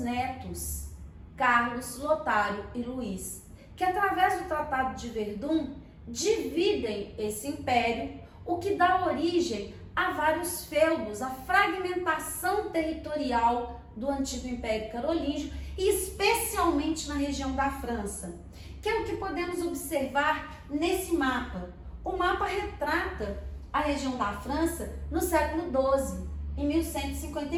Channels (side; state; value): both; identical; correlation 1.00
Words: Carlos, Lotário e Luís, que através do Tratado de Verdun dividem esse império, o que dá origem a vários feudos, a fragmentação territorial do antigo Império Carolíngio e especialmente na região da França, que é o que podemos observar nesse mapa. O mapa retrata a região da França no século XII, em